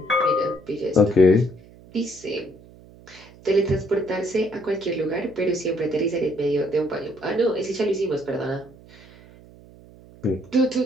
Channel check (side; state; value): right; noise; hum, 23 dB below the sound